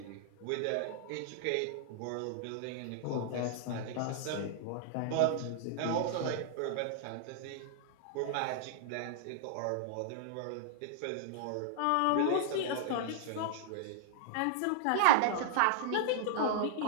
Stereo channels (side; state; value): both; different; correlation -0.01